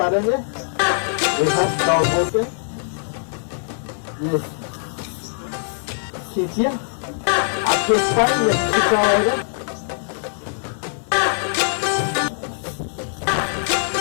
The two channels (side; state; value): right; silent; digital silence